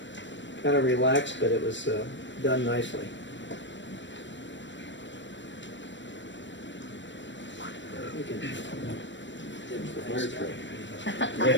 of relaxed, but it was done nicely. We can-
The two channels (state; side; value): late; right; 0.53 ms